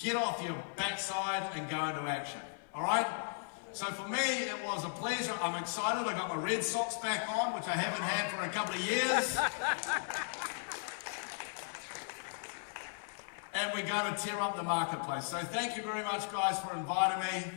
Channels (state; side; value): silent; right; 54 dB below the other